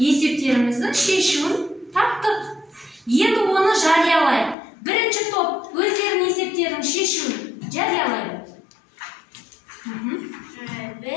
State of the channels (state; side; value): drops out; right; at 4.5 s